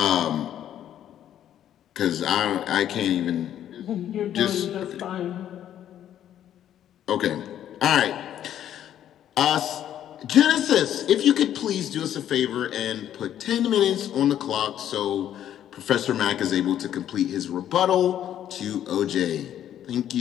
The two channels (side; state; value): right; quieter; 10.8 dB